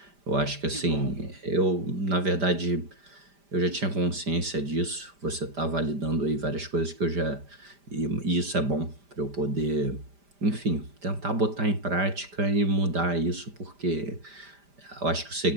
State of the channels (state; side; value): late; left; 5.0 ms